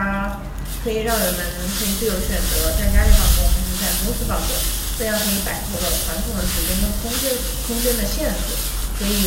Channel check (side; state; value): both; identical; correlation 1.00